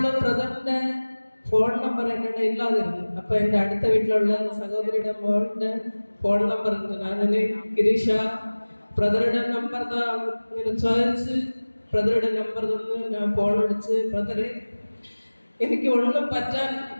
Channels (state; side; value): inverted; both; correlation -1.00